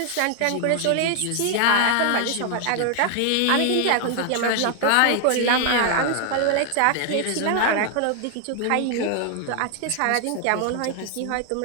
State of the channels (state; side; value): different; both; correlation 0.00